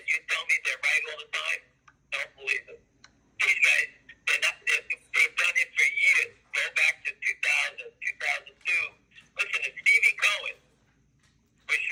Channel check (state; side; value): identical; both; correlation 1.00